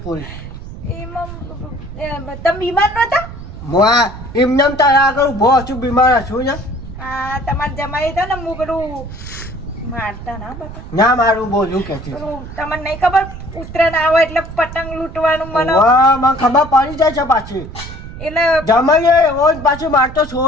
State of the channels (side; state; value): right; noise; rumble, 12 dB below the sound